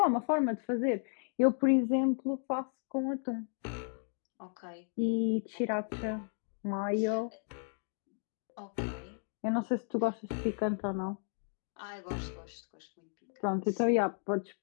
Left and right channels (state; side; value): silent; right; 55 dB below the other